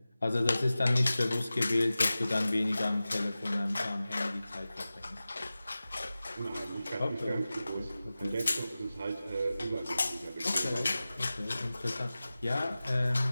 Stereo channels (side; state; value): both; inverted; correlation -0.96